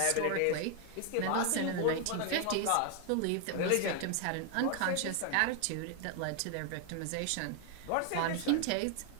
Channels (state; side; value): different; both; correlation 0.00